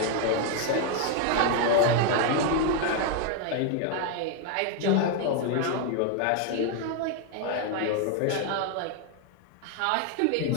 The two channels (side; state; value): both; different; correlation 0.01